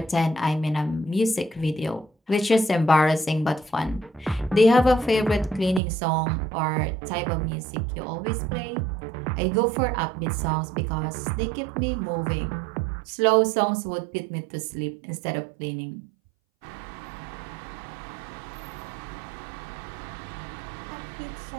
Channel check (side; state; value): left; drops out; at 5.8 s